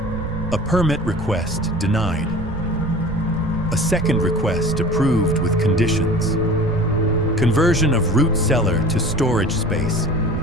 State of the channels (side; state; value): right; noise; rumble, 9 dB below the sound